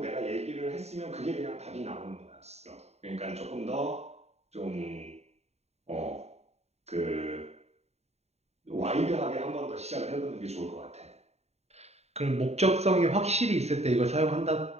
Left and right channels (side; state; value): left; late; 0.31 ms